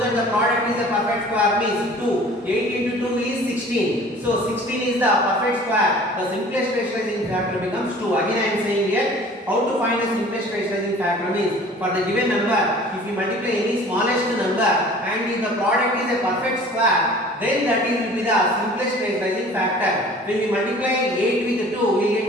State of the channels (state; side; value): normal; both; correlation 0.47